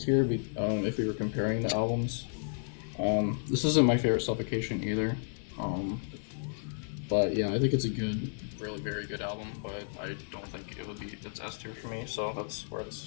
if we were comparing the albums. This isn't my favorite Suffocation either. Um, but yeah, I think it's a good, really very good album. But I don't think it would be it's S tier for me. So that's where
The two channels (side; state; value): right; silent; digital silence